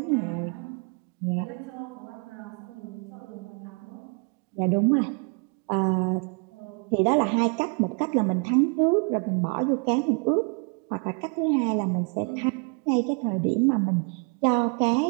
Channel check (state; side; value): quieter; left; 36.8 dB